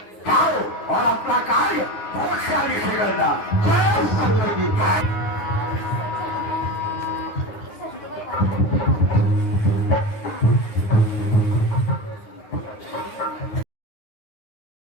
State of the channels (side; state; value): right; late; 9.7 ms